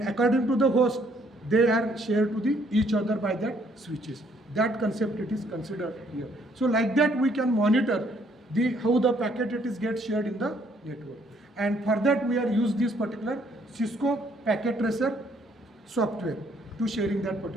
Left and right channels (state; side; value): normal; both; correlation 0.66